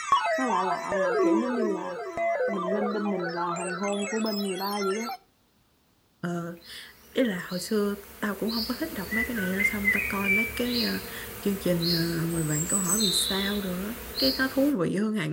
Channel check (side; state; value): both; identical; correlation 1.00